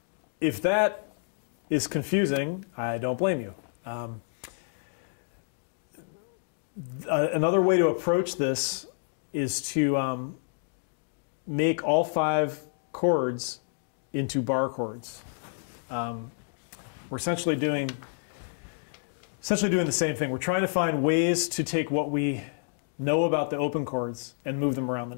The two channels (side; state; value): right; silent; digital silence